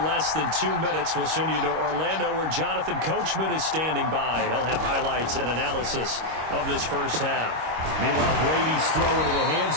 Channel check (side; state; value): left; late; 25 ms